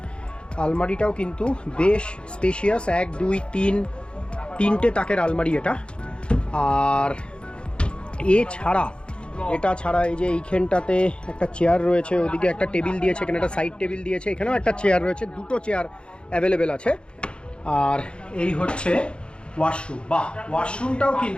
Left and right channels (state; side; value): late; right; 0.055 ms